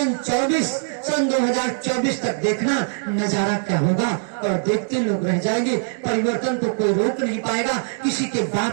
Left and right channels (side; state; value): left; silent; 64 dB below the other